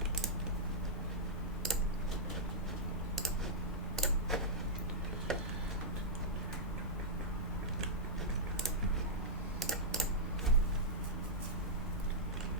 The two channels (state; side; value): normal; both; correlation -0.09